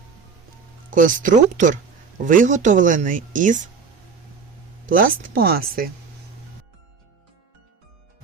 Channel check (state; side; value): quieter; left; 5.6 dB